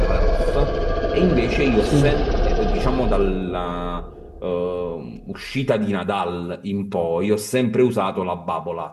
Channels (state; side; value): identical; both; correlation 1.00